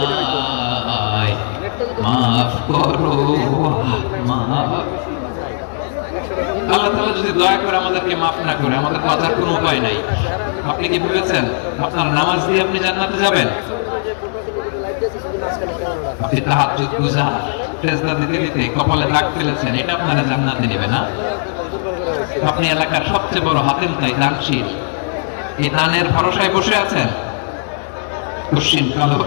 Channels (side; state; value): right; silent; 57 dB below the other